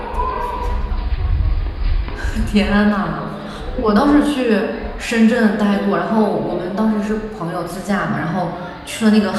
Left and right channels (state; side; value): identical; both; correlation 1.00